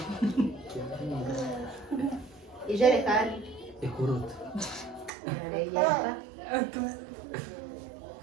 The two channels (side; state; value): left; drops out; at 5.1 s